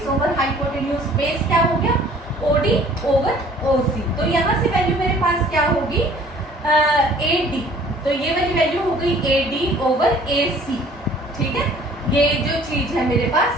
ओवर हाइपोटेन्यूज। बेस क्या हो गया, OD ओवर OC। तो यहाँ से वैल्यू मेरे पास क्या होगी, AD, तो ये वाली वैल्यू हो गई AD ओवर AC। ठीक है, ये जो चीज है मेरे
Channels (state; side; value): normal; both; correlation 0.53